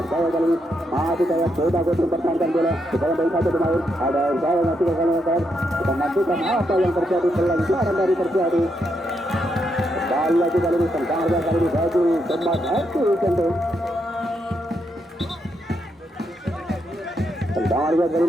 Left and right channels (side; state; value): both; normal; correlation 0.80